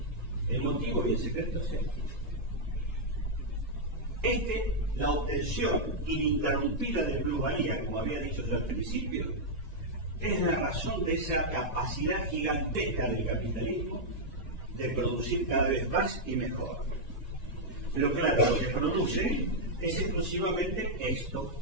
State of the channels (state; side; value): late; right; 1.9 ms